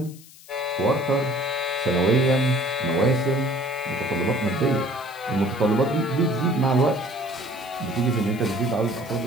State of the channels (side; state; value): left; noise; hiss, 21 dB below the sound